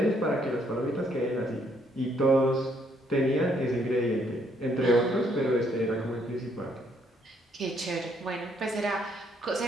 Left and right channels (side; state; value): both; normal; correlation 0.69